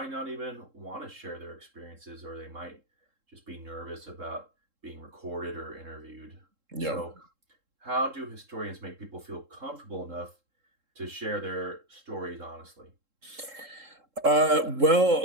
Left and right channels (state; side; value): late; left; 3.7 ms